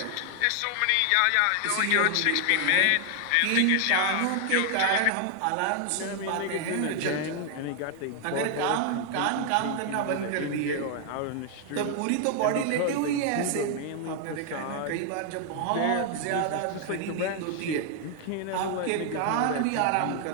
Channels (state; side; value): different; both; correlation 0.00